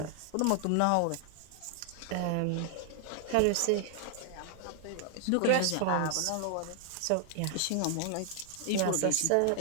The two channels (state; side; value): different; both; correlation 0.00